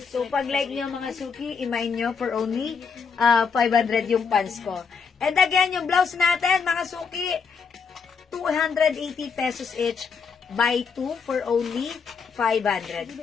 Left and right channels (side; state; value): right; quieter; 5.7 dB